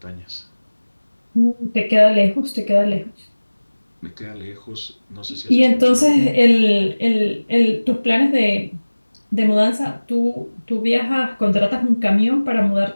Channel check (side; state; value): both; inverted; correlation -1.00